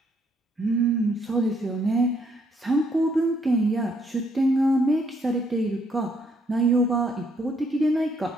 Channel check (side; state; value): both; normal; correlation 0.70